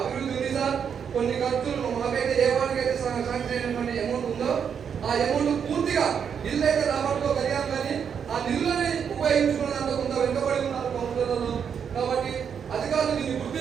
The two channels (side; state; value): left; quieter; 7.4 dB